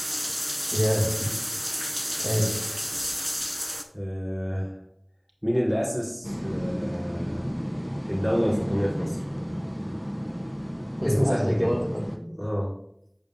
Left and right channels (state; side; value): identical; both; correlation 1.00